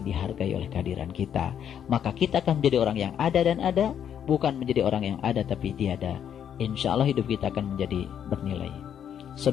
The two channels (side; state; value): right; quieter; 9.0 dB